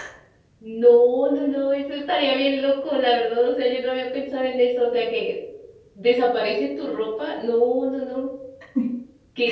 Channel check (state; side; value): identical; both; correlation 1.00